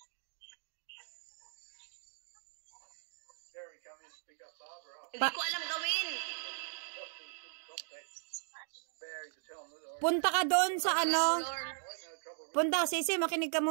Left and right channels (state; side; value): silent; left; digital silence